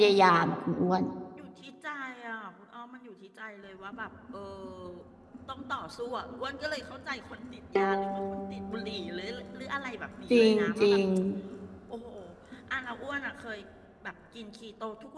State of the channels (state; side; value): identical; both; correlation 1.00